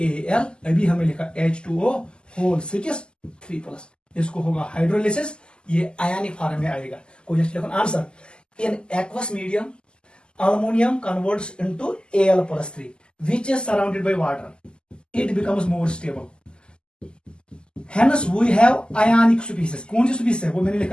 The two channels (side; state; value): right; late; 0.048 ms